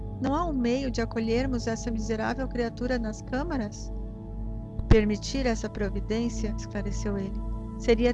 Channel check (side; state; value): both; identical; correlation 1.00